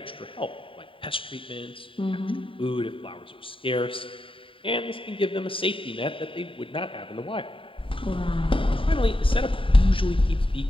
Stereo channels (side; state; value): right; late; 0.25 ms